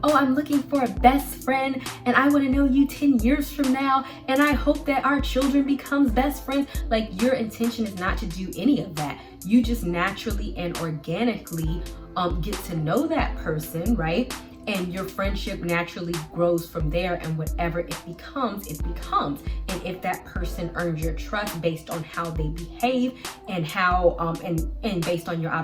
oh, I'm looking for a best friend and I want to know you 10 years from now and I hope that our children becomes best friends. Like, your intention is not to do any of that. You just naturally and organically get to know that person, right? And your friendship naturally grows from there, and whatever it becomes, it becomes. And if that person earns your trust based on how they behave and how and based on your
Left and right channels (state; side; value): identical; both; correlation 1.00